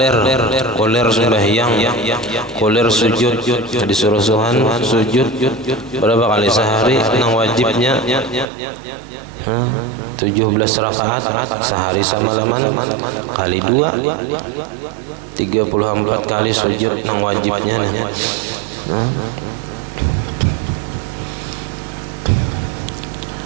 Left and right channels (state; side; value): drops out; left; at 8.5 s